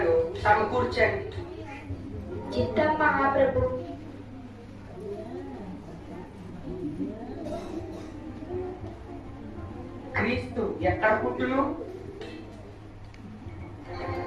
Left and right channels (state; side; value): identical; both; correlation 1.00